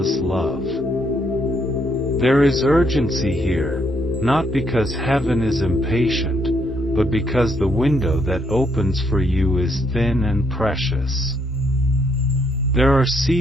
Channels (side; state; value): both; normal; correlation 0.73